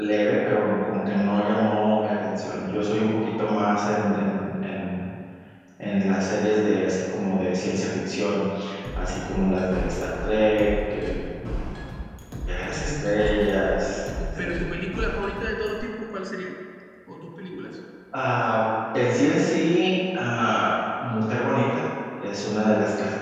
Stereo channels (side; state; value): both; identical; correlation 1.00